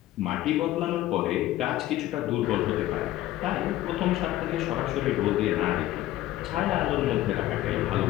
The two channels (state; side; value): quieter; right; 14.9 dB